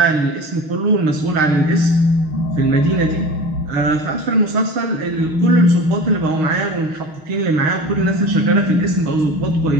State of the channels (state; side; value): late; left; 6.4 ms